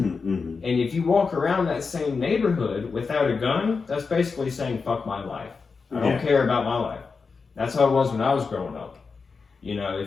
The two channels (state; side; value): quieter; right; 4.9 dB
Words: if you walk around that same neighborhood without a gun, that's basically saying, fuck my life. I don't care about my life. That's how it was when I was growing up.